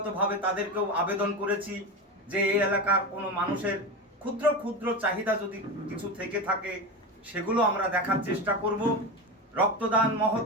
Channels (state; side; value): normal; both; correlation 0.21